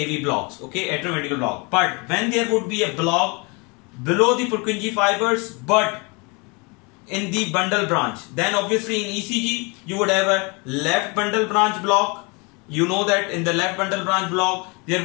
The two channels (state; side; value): quieter; right; 29.8 dB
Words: blocks, okay, atrioventricular block. But when there would be a block below the Purkinje fibers but in the bundle branch, then obviously in ECG you would have a left bundle branch block. You know that in the left bundle branch block there